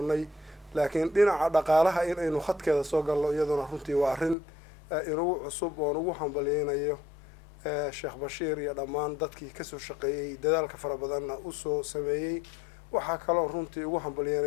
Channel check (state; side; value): drops out; right; at 4.4 s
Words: laakiin dhinaca dhaqaalaha in aynu khadkeeda soo galno iyaduna runtii waa arrin inugu cusub oon ugu hambalyeynayo sheekh bashiir iyo dhammaan dadkii kasoo shaqeeyey dadaalka fara badanna u soo sameeyey waxaa kaloo runtii ugu